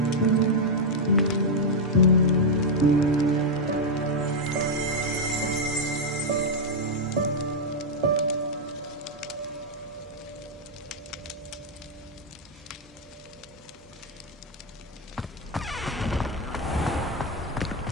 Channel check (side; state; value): both; normal; correlation -0.02